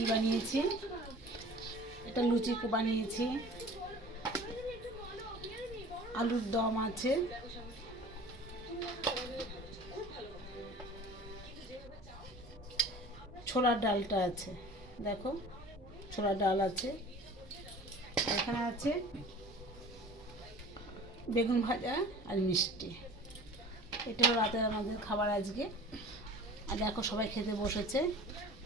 বানিয়েছি। এটা লুচি বানিয়েছি, আলুর দম আছে, ছোলার ডালটা আছে, দেখো ছোলার ডাল আছে, এখানে আছে বেগুন ভাজা আর মিষ্টি। এটা হলো রাতের আমাদের খাবার আজকে। আর দেখো সবাই খেতে বসেছে।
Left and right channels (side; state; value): both; normal; correlation 0.43